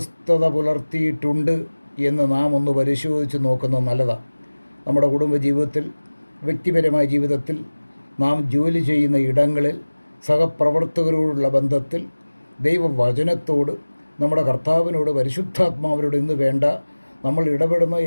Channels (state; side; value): inverted; both; correlation -1.00